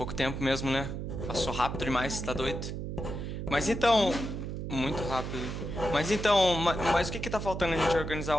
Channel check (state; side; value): noise; right; hum, 5 dB below the sound